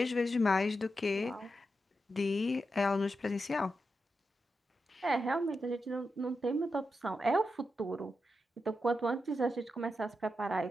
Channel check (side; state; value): both; normal; correlation 0.88